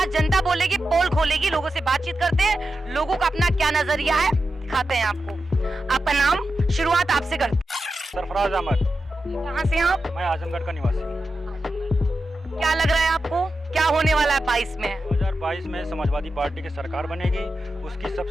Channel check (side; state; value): both; normal; correlation 0.90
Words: जनता बोलेगी पोल खोलेगी। लोगों से बातचीत करते हैं, लोगों का अपना क्या नजरिया है दिखाते हैं आपको। आपका नाम, शुरुआत आपसे करते हैं। सरफराज अहमद। कहाँ से आप? मैं आजमगढ़ का निवासी हूँ। क्या लग रहा है आपको, क्या होने वाला है 22 में? 2022 में समाजवादी पार्टी की सरकार बनेगी। उसकी